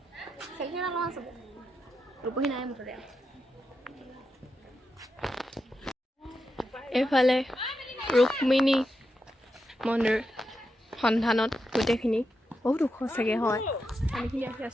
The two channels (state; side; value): normal; both; correlation 0.87